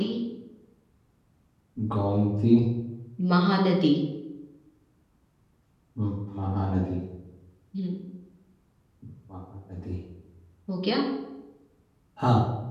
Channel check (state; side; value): identical; both; correlation 1.00